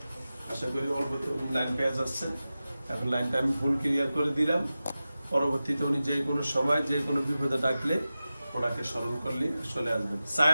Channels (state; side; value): inverted; both; correlation -0.95